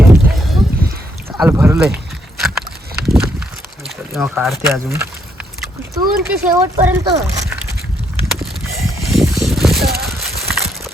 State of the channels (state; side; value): normal; both; correlation 0.74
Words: आहे. चाल भरलंय. तेव्हा काढते अजून. तू ते शेवटपर्यंत.